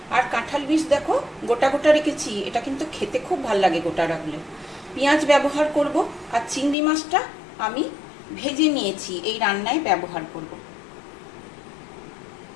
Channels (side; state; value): right; drops out; at 6.8 s